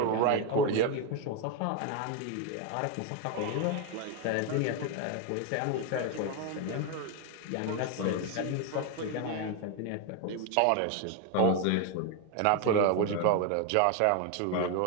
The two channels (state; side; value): different; both; correlation 0.01